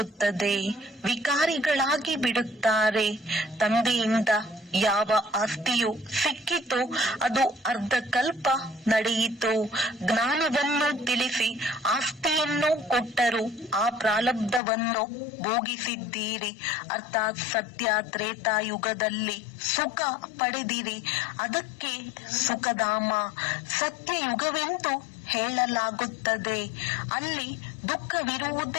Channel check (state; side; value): drops out; right; at 14.6 s